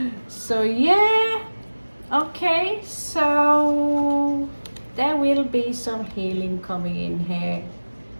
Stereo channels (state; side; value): inverted; both; correlation -1.00